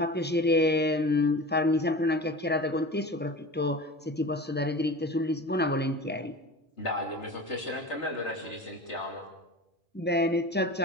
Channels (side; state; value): both; normal; correlation 0.34